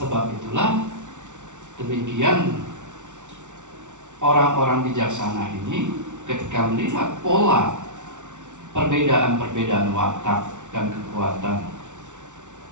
itulah demikian orang-orang bijaksana ini ketika melihat pola perbedaan-perbedaan watak dan kekuatan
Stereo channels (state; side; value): late; left; 0.86 ms